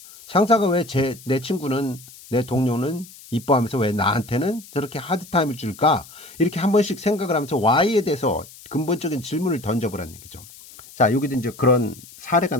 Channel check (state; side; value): noise; left; hiss, 20 dB below the sound